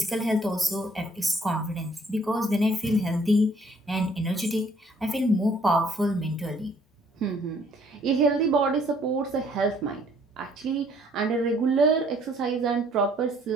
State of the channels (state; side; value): normal; both; correlation 0.62